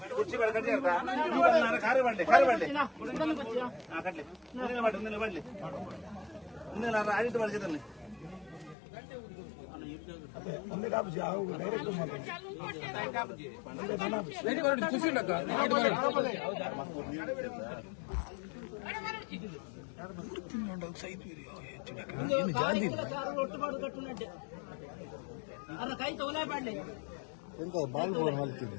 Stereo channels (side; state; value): right; drops out; at 8.8 s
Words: ಕುರ್ಚಿ ಬೇಡ ಕಟ್ಟಿಯಾರ ಕಾರು ಬಂಡೆ ಕಟ್ಲಿ ಬಡ್ಲಿ ಆಡಿಟ್ ಮಾಡ್ತಿದ್ದಾನೆ ಕೈ ತೋಲೆ ಪಾಡ್ಲಿ ಎಂತ ಬಾಲ್ ಬೋನ್